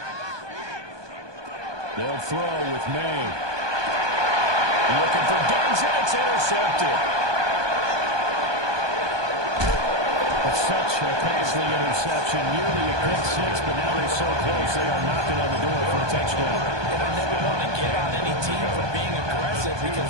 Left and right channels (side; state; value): left; late; 1.2 ms